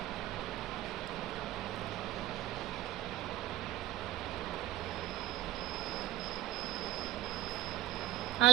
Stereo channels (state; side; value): quieter; left; 14.2 dB